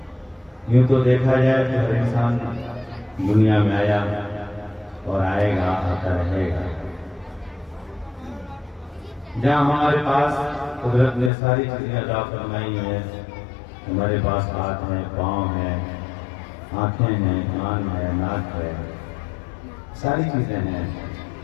یوں تو دیکھا جائے کہ ہر انسان دنیا میں آیا اور آئے گا، آتا رہے گا۔ جہاں ہمارے پاس قدرت نے ساری چیزیں عطا فرمائی ہیں، ہمارے پاس ہاتھ ہیں، پاؤں ہیں، آنکھیں ہیں، کان ہے، ناک ہے، ساری چیزیں ہیں،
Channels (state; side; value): drops out; right; at 11.3 s